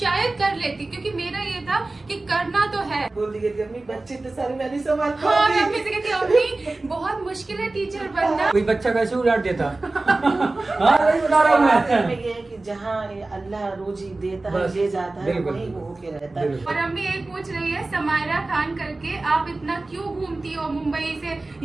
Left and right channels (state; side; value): quieter; left; 3.1 dB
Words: कर लेती, क्योंकि मेरा ये था कि करना तो है। बोल दी कि अम्मी बच्चे तो सारे मैं नहीं संभाल हाँ, मैं पाऊंगी। अम्मी से कहती अम्मी बहुत मुश्किल है टीचर बनना। कोई बच्चा कैसे उलाट देता? हाँ, वही बता रहा हूँ में मैं। ये है कि जहाँ अल्लाह रोजी देता है, बस, ले जाता है, बिल्कुल, वहीं वो होके रहता है। बिल्कुल। और अम्मी एक पूछ रही है समायरा खान करके, आप इतना क्यों घूमती हो मुंबई से